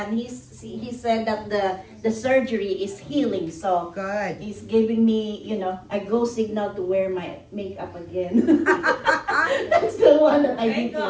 he said that the surgery is healing. So Good. he's giving me, a go signal to wear my makeup again. That's the one that I Thank did.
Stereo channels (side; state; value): both; identical; correlation 1.00